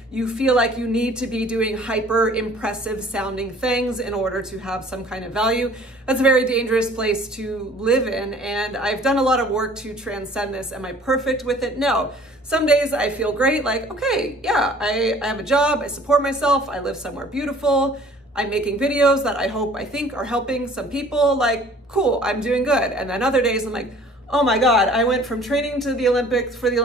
you feel like you need to be doing hyper impressive sounding things in order to have some kind of value, that's a very dangerous place to live in. And I've done a lot of work to transcend this. Am I perfect with it? No. Some days I feel great, like, okay, yeah, I have a job, I support myself, I live somewhere beautiful, I'm making videos that I think are helping some people, like, cool, I'm doing good. And then other days I'm like, oh my God, I went from training for the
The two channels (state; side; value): normal; both; correlation 0.52